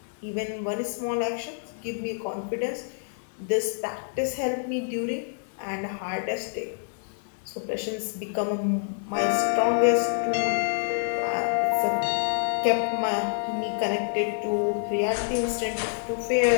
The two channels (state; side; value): silent; right; digital silence